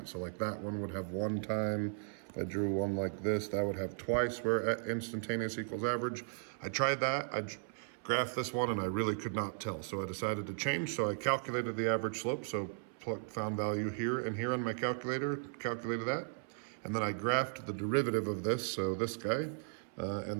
So like that one would have one time. If I drew one like this, that would have twice where instantaneous equals average. I tried that. I graphed this one and I really could not tell. So I decided to change. So I calculated the average slope. So found value here and here on my calculator, calculated that. And then I graphed the derivative of this, so this guy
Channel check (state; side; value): silent; left; 54 dB below the other